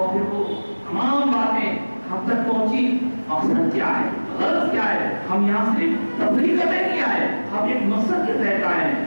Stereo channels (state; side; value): inverted; both; correlation -1.00